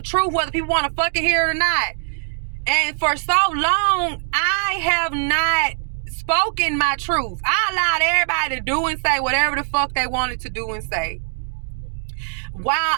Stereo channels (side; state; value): left; silent; 57 dB below the other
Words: truth, whether people want to fucking hear it or not. And for so long, I have not spoken my truth. I allowed everybody to do and say whatever the fuck they wanted to do and say. While